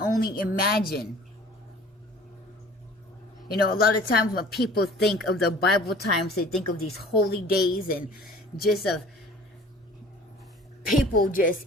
imagine. A lot of times when people think of the Bible times, they think of these holy days and just of people just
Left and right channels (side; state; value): both; normal; correlation 0.48